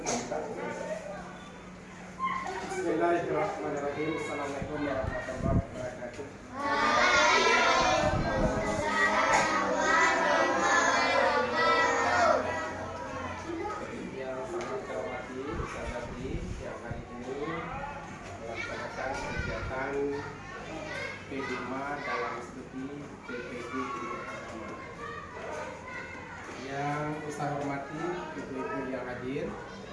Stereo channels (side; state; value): both; identical; correlation 1.00